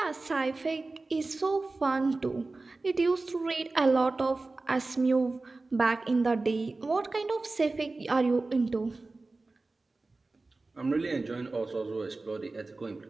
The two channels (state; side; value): quieter; left; 3.4 dB